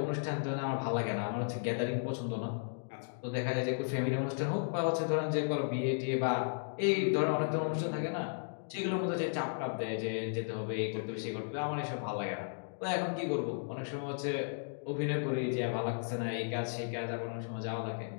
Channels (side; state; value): right; silent; digital silence